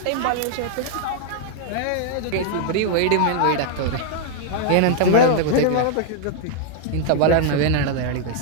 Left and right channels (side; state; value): both; different; correlation 0.00